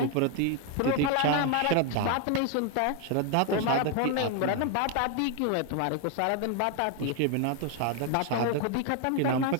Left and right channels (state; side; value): different; both; correlation 0.01